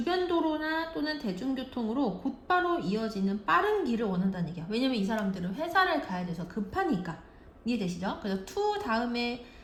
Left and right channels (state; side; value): identical; both; correlation 1.00